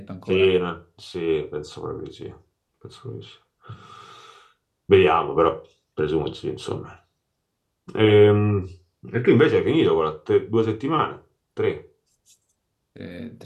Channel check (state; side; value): identical; both; correlation 1.00